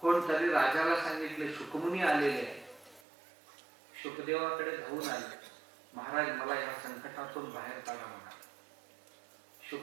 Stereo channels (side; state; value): left; drops out; at 3.0 s